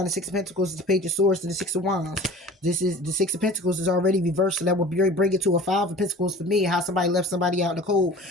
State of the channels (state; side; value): normal; both; correlation 0.42